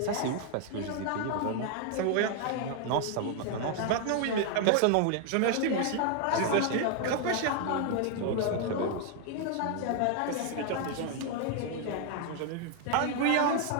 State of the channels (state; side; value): different; both; correlation 0.00